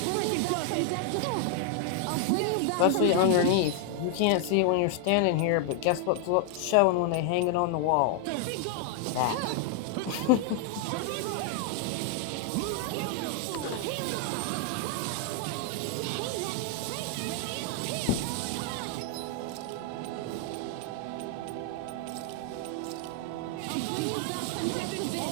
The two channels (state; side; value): different; both; correlation 0.00